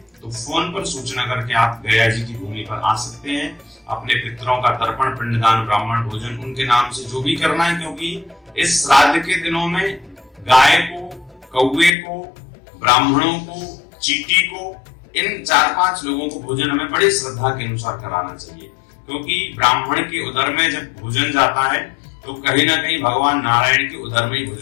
तो तो फोन पर सूचना करके आप गया जी की भूमि पर आ सकते हैं। अपने पितरों का तर्पण, पिंडदान, ब्राह्मण भोजन उनके नाम से जो भी करना है, क्योंकि इस श्राद्ध के दिनों में गाय को, कौवे को, ब्राह्मणों को, चींटी को, इन 4-5 लोगों को भोजन हमें बड़ी श्रद्धा के अनुसार कराना चाहिए, क्योंकि ब्राह्मण के उदर में जब भोजन जाता है तो कहीं ना कहीं भगवान नारायण के उदर में ही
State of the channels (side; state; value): right; drops out; at 12.0 s